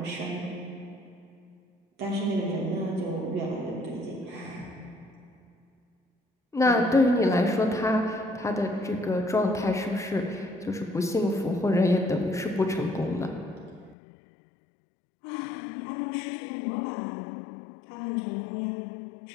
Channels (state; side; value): drops out; right; at 14.0 s